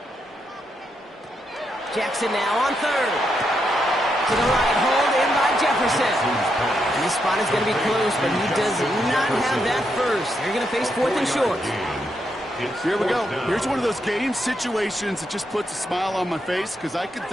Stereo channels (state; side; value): normal; both; correlation 0.81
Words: Jackson now on 3rd. To the right, hold in by Jefferson. And this spot is going to be close, but he does not have that first. They're going to face 4th and short. Here we go. Here's one of those game situations that just puts a smile on my face because I can